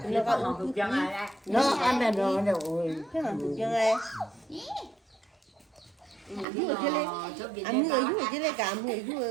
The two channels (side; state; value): left; drops out; at 6.5 s